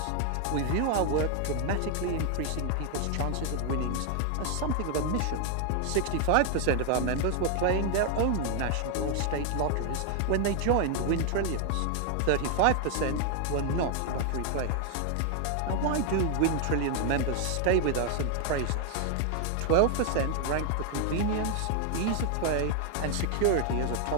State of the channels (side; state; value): both; different; correlation 0.00